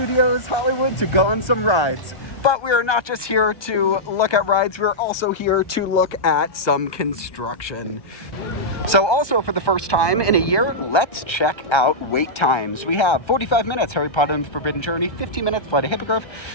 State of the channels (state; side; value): late; right; 1.3 ms